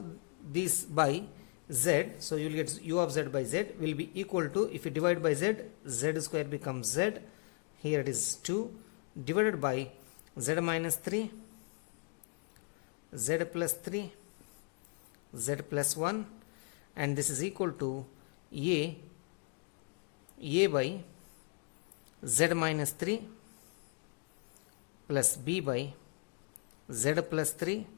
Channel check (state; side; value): quieter; right; 39.8 dB